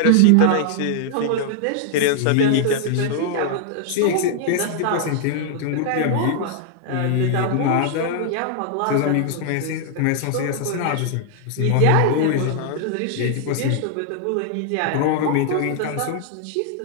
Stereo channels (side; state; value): both; different; correlation 0.00